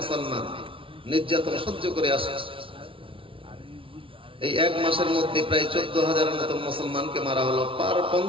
নির্যাতন সহ্য করে আসে। এই এক মাসের মধ্যে প্রায় 14,000-এর মতো মুসলমানকে মারা হলো। পার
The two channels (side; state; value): left; late; 0.25 ms